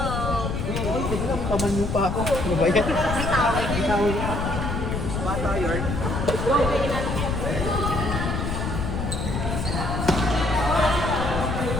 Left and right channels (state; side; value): noise; left; rumble, 2 dB below the sound